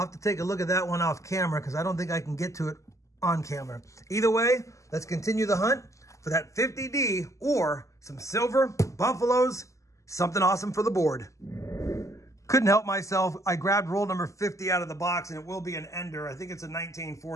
to take a look at that one off camera because I don't think I can get to it on camera. Either way, let's continue the hunt. for that 50D or some silver, buffaloes, something awesome for the board. Couldn't help myself. I grabbed roll number 50 out of the box, and it will be an ender. I think it's a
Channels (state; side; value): late; right; 0.15 ms